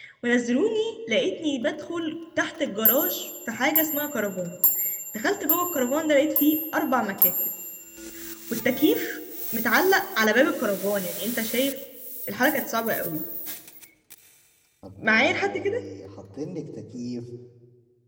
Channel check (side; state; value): both; identical; correlation 1.00